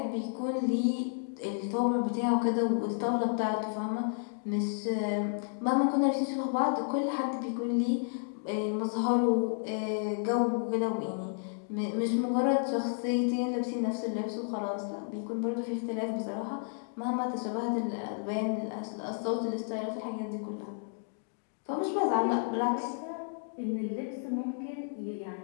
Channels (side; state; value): right; silent; digital silence